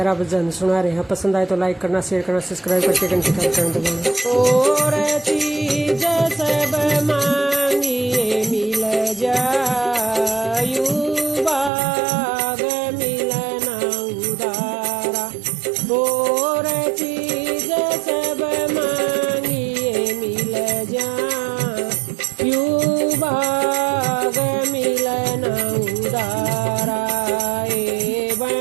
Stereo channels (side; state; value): left; drops out; at 11.7 s